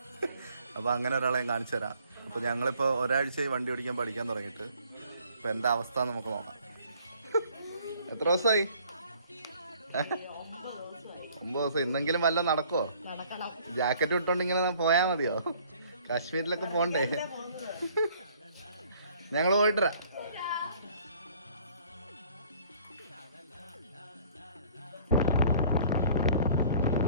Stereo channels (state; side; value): inverted; both; correlation -0.57